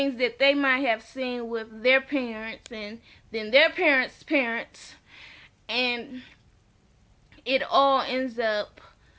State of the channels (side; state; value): both; identical; correlation 1.00